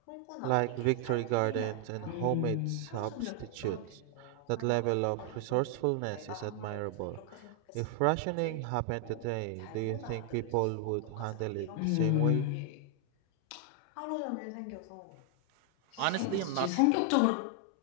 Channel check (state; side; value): different; both; correlation 0.00